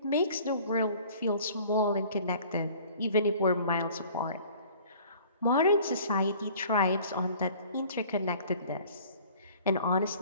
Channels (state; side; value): inverted; both; correlation -0.50